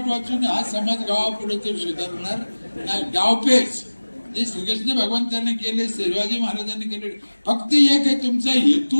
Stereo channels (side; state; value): both; inverted; correlation -1.00